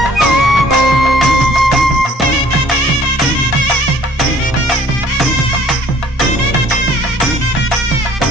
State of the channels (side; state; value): both; normal; correlation 0.56